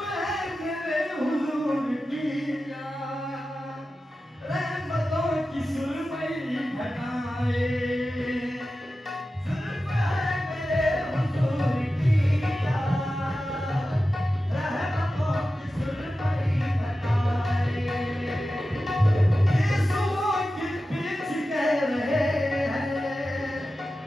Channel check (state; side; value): normal; both; correlation 0.93